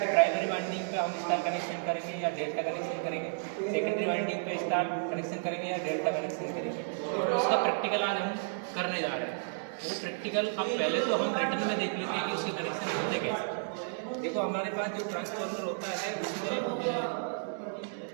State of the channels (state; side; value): silent; left; digital silence